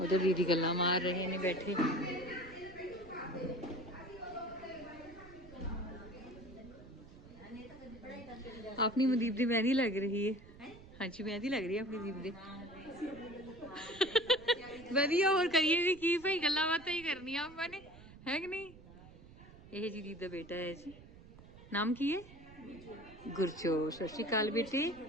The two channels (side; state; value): right; noise; rumble, 19 dB below the sound